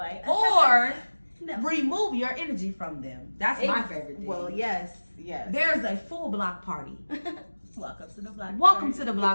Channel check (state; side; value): inverted; both; correlation -1.00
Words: or remove your energy from them. That's my favorite thing. Well, yes. There's a full block party. Welcome to the block party. Welcome to the